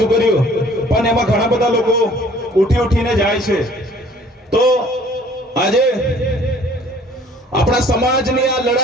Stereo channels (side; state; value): both; normal; correlation 0.54